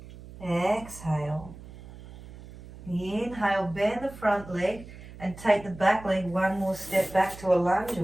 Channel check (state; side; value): noise; right; hum, 16 dB below the sound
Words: Exhale. Inhale, bend the front leg and take the back leg one more step back to a lunge